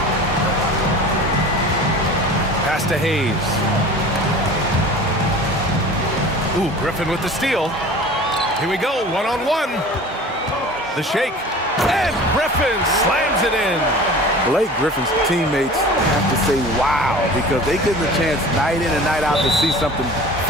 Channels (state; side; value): normal; both; correlation 0.40